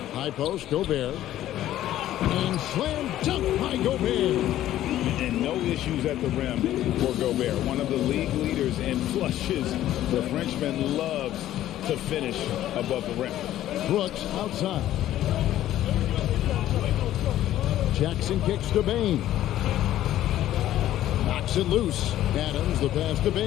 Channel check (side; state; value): right; quieter; 13.1 dB